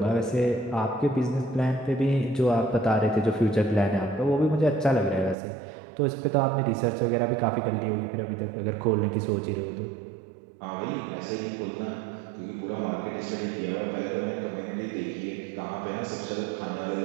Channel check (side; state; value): left; drops out; at 5.4 s